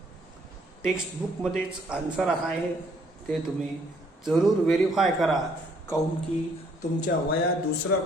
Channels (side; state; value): both; normal; correlation 0.64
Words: Text book मध्येच आन्सर आहे, ते तुम्ही जरूर व्हेरीफाय करा. काऊन की तुमच्या वया